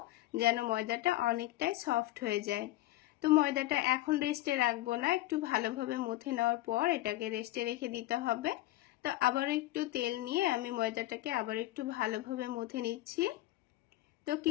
যেন ময়দাটা অনেকটাই সফট হয়ে যায়। তো ময়দাটা এখন রেস্টে রাখবো না, একটু ভালোভাবে মথে নেওয়ার পর এটাকে রেস্টে রেখে দিতে হবে। তো আবার একটু তেল নিয়ে আমি ময়দাটাকে আবার একটু ভালোভাবে মথে নিচ্ছি। তো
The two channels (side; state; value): right; quieter; 16.6 dB